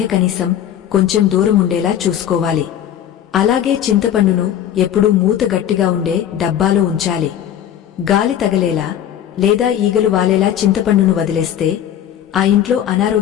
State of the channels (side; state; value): right; quieter; 10.4 dB